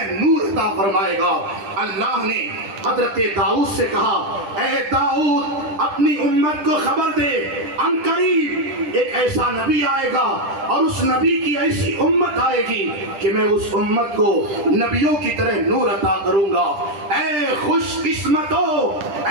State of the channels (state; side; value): late; left; 10 ms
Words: نور عطا فرمائے گا۔ اللہ نے حضرت داؤد سے کہا، اے داؤد، اپنی امت کو خبر دے، ان قریب ایک ایسا نبی آئے گا، اور اس نبی کی ایسی امت آئے گی کہ میں اس امت کو نبیوں کی طرح نور عطا کروں گا۔ اے خوش قسمتو،